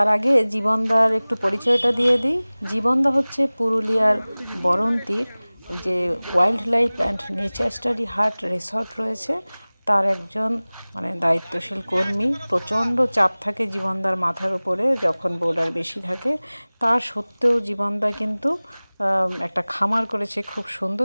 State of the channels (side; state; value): both; inverted; correlation -1.00